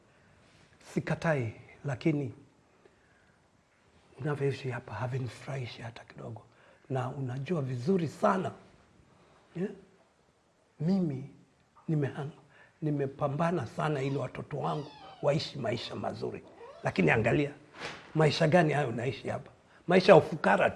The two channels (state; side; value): identical; both; correlation 1.00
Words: Sikatai, lakini unavyoishi hapa havinifurahishi hata kidogo. Na unajua vizuri sana mimi nimepambana sana ili watoto wangu waishi maisha mazuri. Lakini angalia, maisha gani hayo unaishi hapa? Maisha ya ufukara